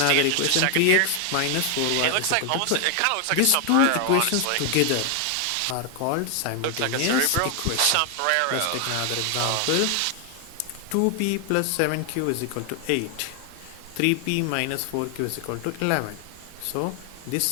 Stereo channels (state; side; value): different; both; correlation 0.00